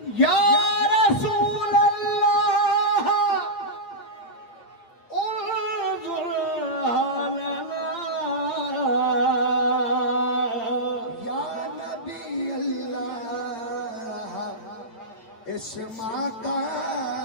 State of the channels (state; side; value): late; right; 8.8 ms